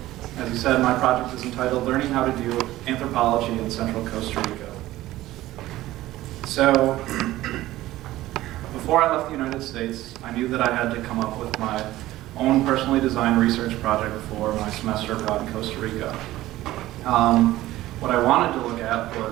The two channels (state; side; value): quieter; left; 16.0 dB